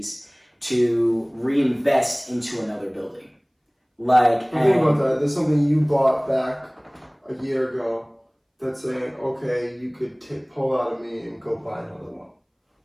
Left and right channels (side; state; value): both; identical; correlation 1.00